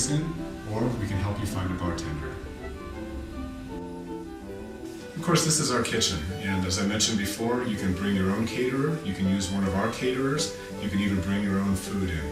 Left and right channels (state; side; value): identical; both; correlation 1.00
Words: in, or we can help you find a bartender. Of course, this is our kitchen, and as I mentioned before, you can bring your own caterer, you can use one of our caterers, you can even bring your own food